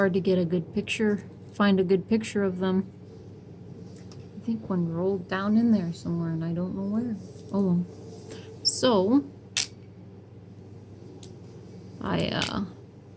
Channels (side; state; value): both; identical; correlation 1.00